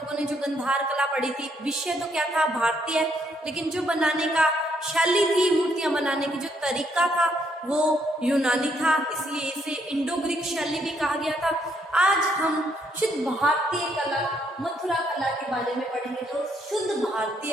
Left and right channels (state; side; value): normal; both; correlation 0.72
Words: ने जो गंधार कला पढ़ी थी, विषय तो क्या था, भारतीय, लेकिन जो बनाने का शैली थी, मूर्तियां बनाने की जो तरीका था वो यूनानी था, इसलिए इसे इंडो ग्रीक शैली भी कहा गया था। आज हम शुद्ध भारतीय कला मथुरा कला के बारे में पढ़ेंगे, जो शुद्ध